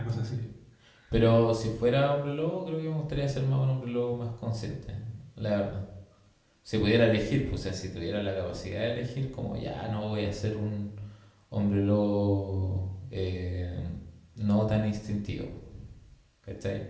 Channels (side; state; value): both; identical; correlation 1.00